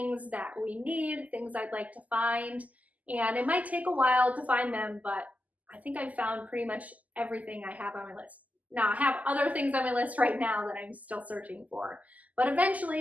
that we need, things I'd like to find. And it might take a while to find them, but I think I've found pretty much everything I have on my list. Now, I have other things on my list right now that I'm still searching for, but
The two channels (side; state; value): left; late; 0.076 ms